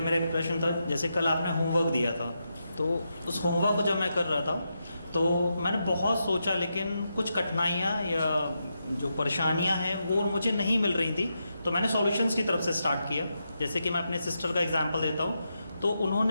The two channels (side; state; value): both; inverted; correlation -0.85